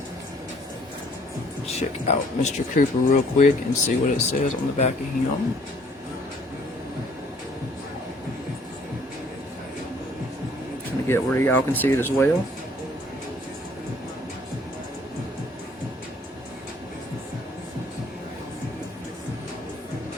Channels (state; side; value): normal; both; correlation 0.59